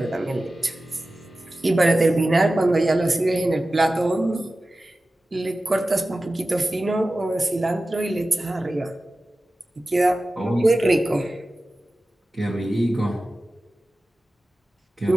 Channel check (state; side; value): normal; both; correlation 0.95